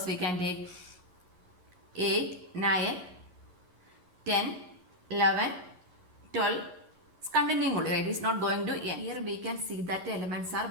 we can take? 8, 9, 10, 11, 12. It's continuing only, right? It's not going to end. Here we can see that the elements are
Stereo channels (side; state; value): left; late; 11 ms